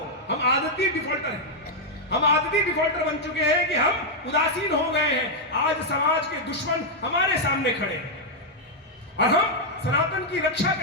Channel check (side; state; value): both; normal; correlation -0.02